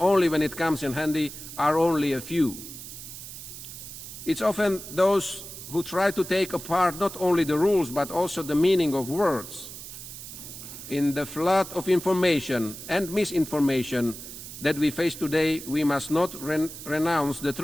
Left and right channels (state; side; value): noise; right; hiss, 12 dB below the sound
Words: when it comes in handy are only a few. It's often those who try to take apart not only the rules but also the meaning of words. In the flood of information and misinformation that we face today, we must not renounce the